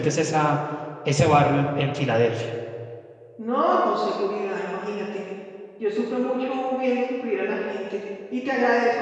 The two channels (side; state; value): both; identical; correlation 1.00